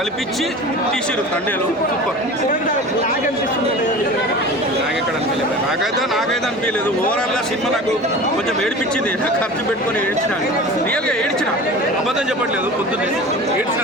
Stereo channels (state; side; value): normal; both; correlation 0.36